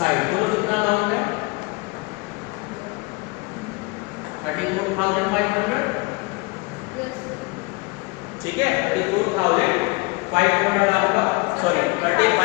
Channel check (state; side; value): quieter; right; 26.4 dB